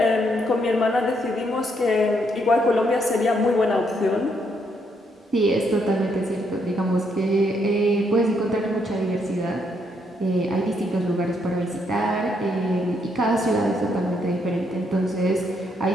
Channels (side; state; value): both; normal; correlation 0.74